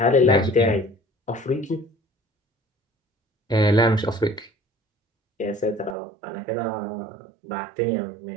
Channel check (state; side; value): drops out; left; at 6.0 s